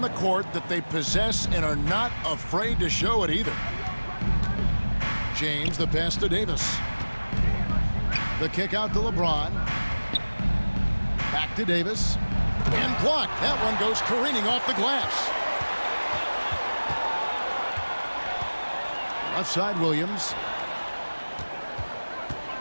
the court that they possess and are not afraid to show it either. James, the pass to Davis. The kick out to LeBron. Back to Davis. And blocked. That one goes careening off the glass. Left side, Williams.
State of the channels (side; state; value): both; inverted; correlation -1.00